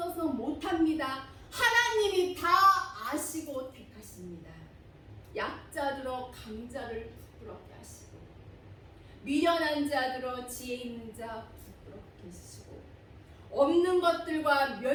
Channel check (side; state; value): both; identical; correlation 1.00